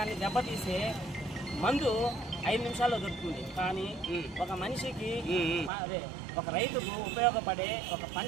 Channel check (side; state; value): left; drops out; at 5.7 s